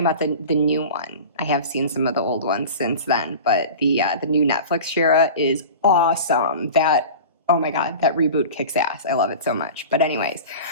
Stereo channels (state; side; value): inverted; both; correlation -0.35